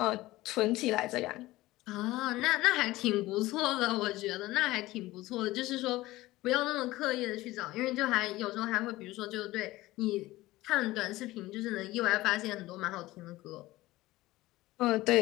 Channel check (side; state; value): right; quieter; 18.1 dB